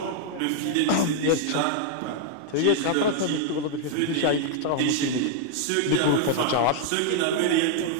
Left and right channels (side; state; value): both; different; correlation 0.00